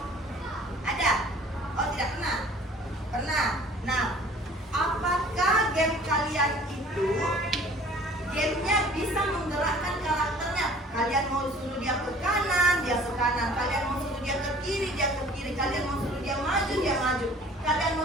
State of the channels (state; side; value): normal; both; correlation 0.50